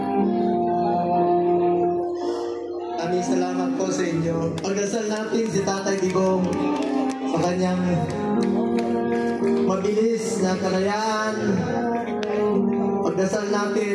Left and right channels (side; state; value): both; identical; correlation 1.00